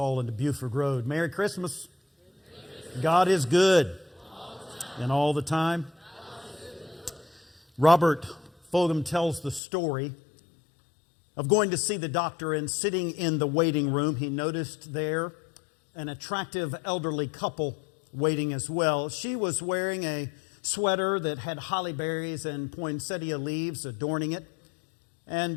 and to Buford Road. Merry Christmas. God is good and all the time. Robert Fogum tells the story of going to see the doctor and sitting in the waiting room. He noticed there an attractive elderly couple waiting as well. She was wearing a sweater that had holly berries and poinsettia leaves adorning it. And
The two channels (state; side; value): drops out; right; at 9.6 s